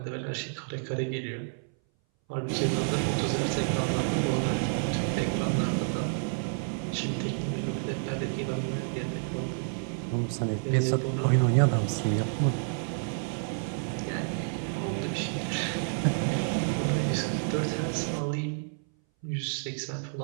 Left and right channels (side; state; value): left; silent; 58 dB below the other